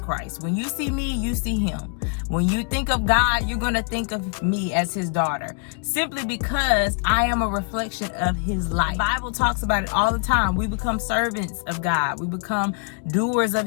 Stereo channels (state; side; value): quieter; right; 39.6 dB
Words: When you see me, you see him. When you think of God, you're going to think of me as his daughter. Simply because I am a reflection of his life. The Bible talks about it all the time. We become servants of God. We become doers of